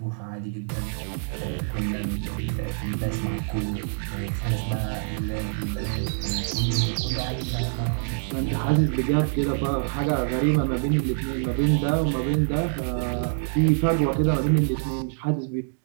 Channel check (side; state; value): left; silent; 61 dB below the other